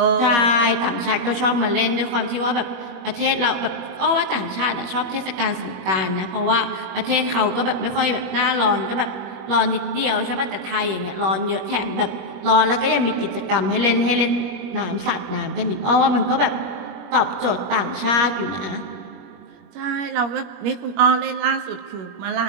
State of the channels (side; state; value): left; late; 21 ms